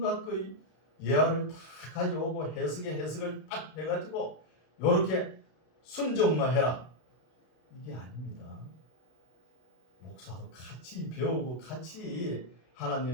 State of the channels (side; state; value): right; late; 32 ms